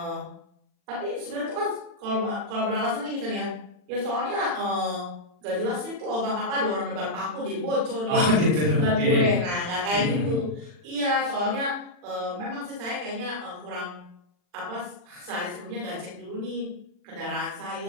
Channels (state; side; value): late; left; 40 ms